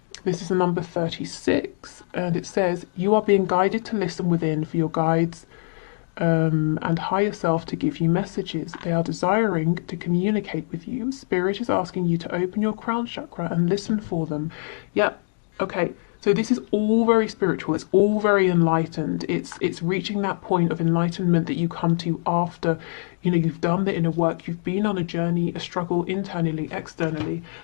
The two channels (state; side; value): silent; right; digital silence